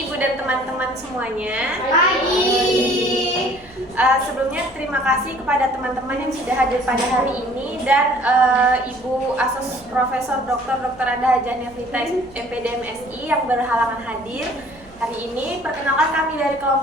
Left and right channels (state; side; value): noise; right; hum, 27 dB below the sound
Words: Ibu dan teman-teman semuanya. Pagi. Sebelumnya terima kasih kepada teman-teman yang sudah hadir pada hari ini dan Ibu Asos Profesor Dr. Anda Hajah Nevrita MPD MSI yang berhalangan hadir. Hari ini perkenalkan kami dari